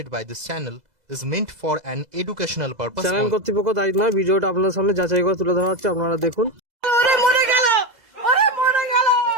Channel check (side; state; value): left; late; 2.0 ms